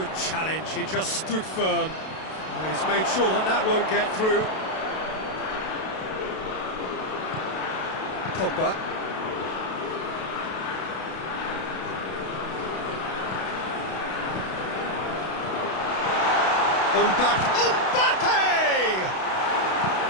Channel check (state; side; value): late; right; 32 ms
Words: challenge, he just stood firm. He's made sure that that won't get through. Pogba. Mbappe!